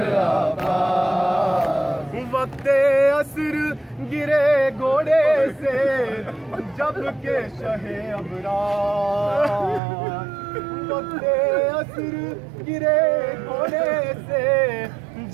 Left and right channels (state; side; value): drops out; left; at 9.8 s